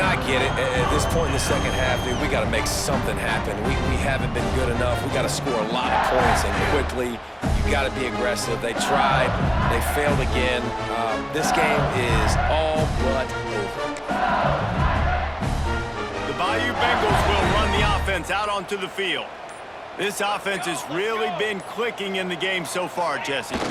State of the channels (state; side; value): identical; both; correlation 1.00